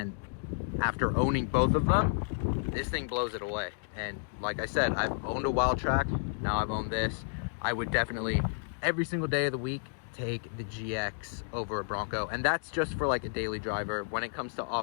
after owning both of them, this thing blows it away. And like I said, I've owned a Wildtrak, now I've owned this. I would definitely, every single day of the week, take the GX over a Bronco, and that's just for like a daily driver. When it comes to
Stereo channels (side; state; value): right; silent; digital silence